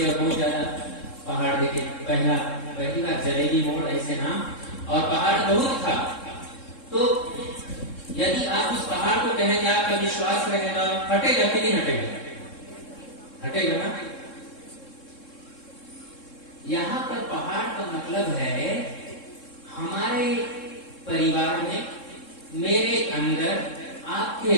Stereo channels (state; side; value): late; right; 3.7 ms